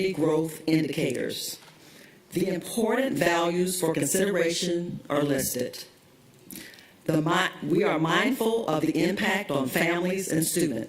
growth indicators. The important values for consideration are listed. We are mindful of the impact on families and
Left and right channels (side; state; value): both; identical; correlation 1.00